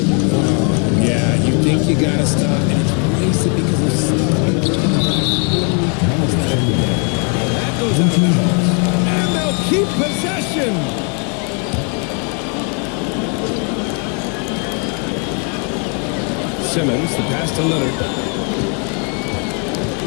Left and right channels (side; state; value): right; quieter; 38.7 dB